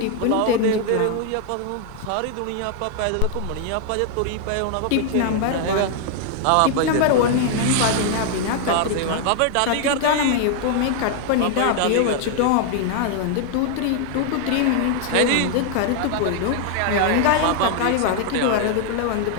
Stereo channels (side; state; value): both; different; correlation 0.00